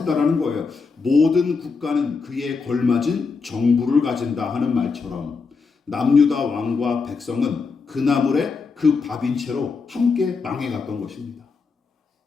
거예요. 모든 국가는 그에 걸맞은 정부를 가진다 하는 말처럼 남유다 왕과 백성은 그 나물에 그 밥인 채로 함께 망해갔던 것입니다.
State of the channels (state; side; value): quieter; right; 4.8 dB